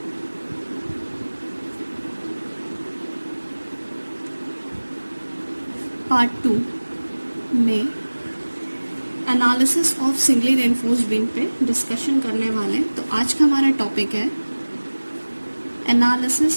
part 2 में analysis of singly reinforced beam पे discussion करने वाले हैं। तो आज का हमारा टॉपिक है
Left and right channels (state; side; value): inverted; both; correlation -1.00